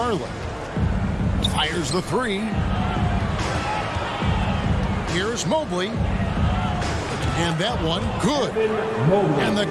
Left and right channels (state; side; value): identical; both; correlation 1.00